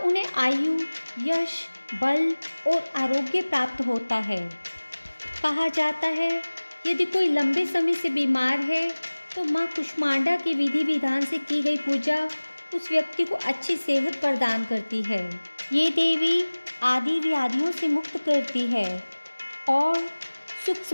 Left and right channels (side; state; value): both; inverted; correlation -1.00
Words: आयु, यश, बल और आरोग्य प्राप्त होता है। कहा जाता है यदि कोई लंबे समय से बीमार है तो माँ कुष्मांडा की विधि विधान से की गई पूजा उस व्यक्ति को अच्छी सेहत प्रदान करती है। ये देवी आदि व्याधियों से मुक्त करती है और सुख